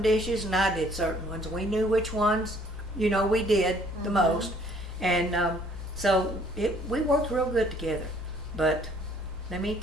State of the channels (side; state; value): both; normal; correlation 0.60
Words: dishes and I did certain ones. We knew which ones, we did the most. And so we worked real good together. But let me